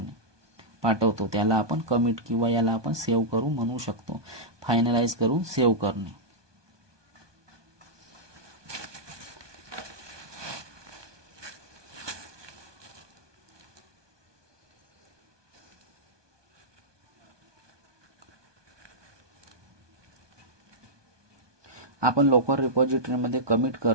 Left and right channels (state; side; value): late; left; 1.2 ms